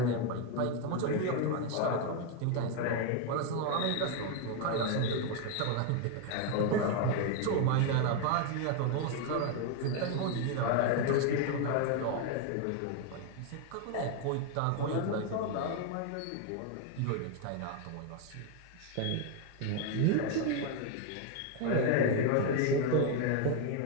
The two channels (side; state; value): both; different; correlation 0.01